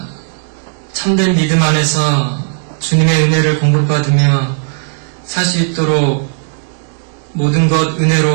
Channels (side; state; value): left; silent; digital silence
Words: 참된 믿음 안에서 주님의 은혜를 공급받으며 살 수 있도록 모든 것